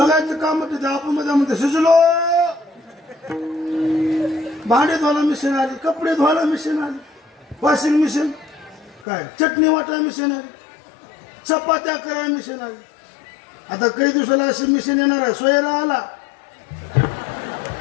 काम होते. आपण मध्ये शिजलो. भांडे धुवायला मिशन आली कपडे धुवायला मिशन आली वॉशिंग मिशन काय चटणी वाटायला मिशन आली चपात्या करायला मिशन आली. आता काही दिवसाला अशी मिशन येणार आहे. सोयरा आला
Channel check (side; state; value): right; drops out; at 9.1 s